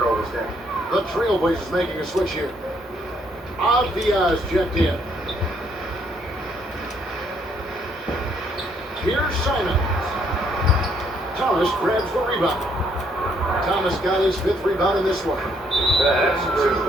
down. The Trailblazers making a switch here. Diaz checked in. Here's Simons. Thomas grabs the rebound. Thomas got his 5th rebound in this one. That's two,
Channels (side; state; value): both; normal; correlation 0.69